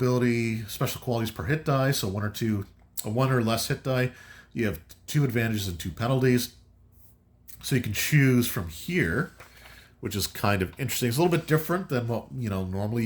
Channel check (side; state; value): both; identical; correlation 1.00